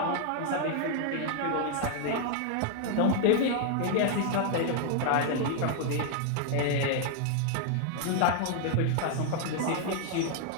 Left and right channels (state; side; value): different; both; correlation 0.00